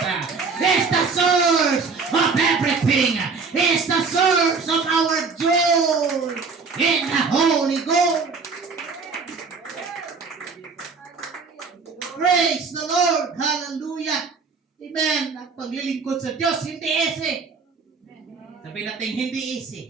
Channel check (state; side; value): quieter; left; 4.8 dB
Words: He is the source of everything. He is the source of our joy in the Holy Ghost. Praise the Lord. Hallelujah. Amen. Ang paglilingkod sa Diyos, hindi easy. Sabi natin, hindi